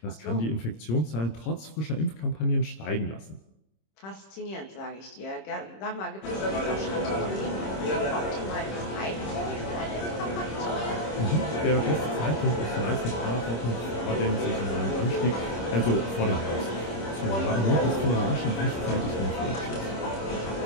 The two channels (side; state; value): right; late; 26 ms